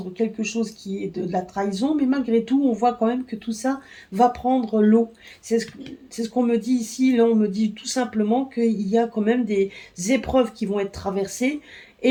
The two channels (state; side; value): identical; both; correlation 1.00